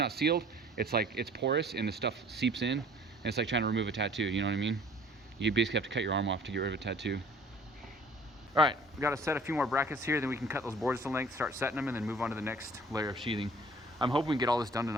sealed, it's like it's porous and the stuff seeps in, and it's like trying to remove a tattoo. You know what I mean? You basically have to cut your arm off to get rid of a tattoo. All right, we got to set a few more brackets here, then we can cut those boards to length, start setting them, and then move on to the next layer of sheathing. I'm hoping we can get all this done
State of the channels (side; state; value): both; normal; correlation 0.52